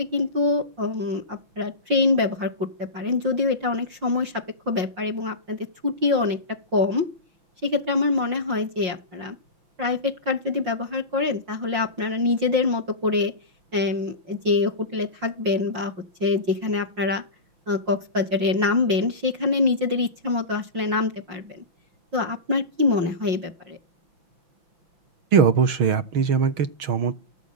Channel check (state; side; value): late; left; 5.6 ms